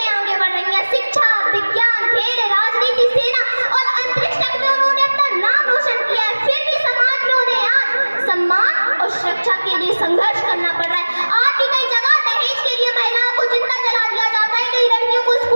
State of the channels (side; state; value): both; inverted; correlation -1.00